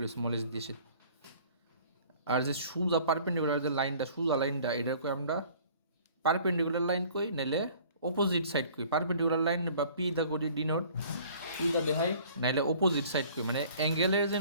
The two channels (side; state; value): both; inverted; correlation -0.52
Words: স্মল এইচ দিয়ে। আর যে সোজা পারপেন্ডিকুলার যে লাইনটা, সোজা লাইনটা, এটা কই আমরা পারপেন্ডিকুলার লাইন কই, নাইলে অপোজিট সাইড কই। পারপেন্ডিকুলার লাইন বা পি দা করি ডিনোট, পি দা দেখাই, নাইলে অপোজিট সাইড কই, মানে অ্যাঙ্গেলের যে